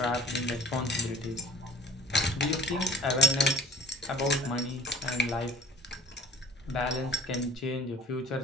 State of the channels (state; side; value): normal; both; correlation 0.49